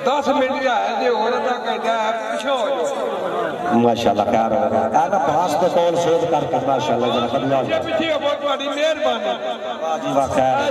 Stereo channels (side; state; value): both; identical; correlation 1.00